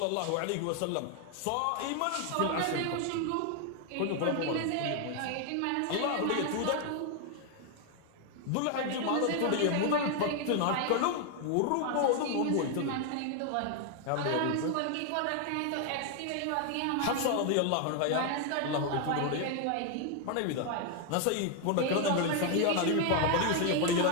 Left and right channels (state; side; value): different; both; correlation 0.00